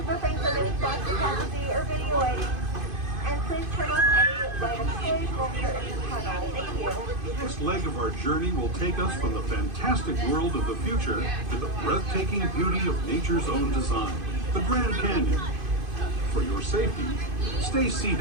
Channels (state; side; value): late; left; 2.5 ms